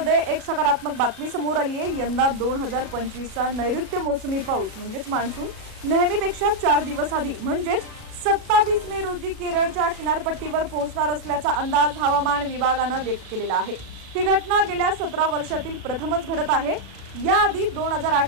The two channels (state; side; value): late; left; 37 ms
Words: एक सकारात्मक बातमी समोर आली आहे। यंदा 2025चा नैऋत्य मोसमी पाऊस म्हणजेच मान्सून नेहमीपेक्षा 4 दिवस आधी म्हणजेच 27 मे रोजी केरळच्या किनारपट्टीवर पोहोचणार असल्याचा अंदाज हवामान विभागाने व्यक्त केलेला आहे। ही घटना गेल्या 17 वर्षातील प्रथमच घडत आहे। याआधी